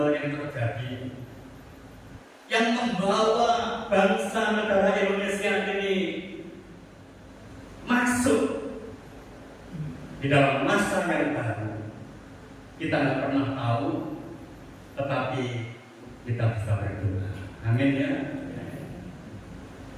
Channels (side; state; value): both; identical; correlation 1.00